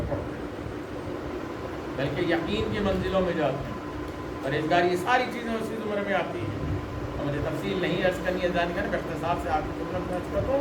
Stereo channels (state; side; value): identical; both; correlation 1.00